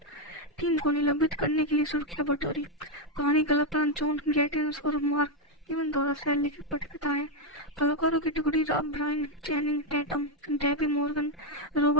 टीम को निलंबित करने के लिए सुर्खियां बटोरी। कहानी कलाकार जॉन गैटिन्स और मार्क इवन द्वारा लिखित पटकथा है। कलाकारों की टुकड़ी Brian Channing Tatum, Debbie Morgan,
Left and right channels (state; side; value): normal; both; correlation 0.03